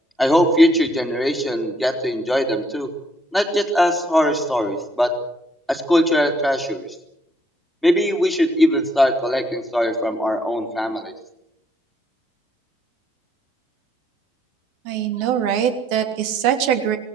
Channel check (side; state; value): both; normal; correlation 0.69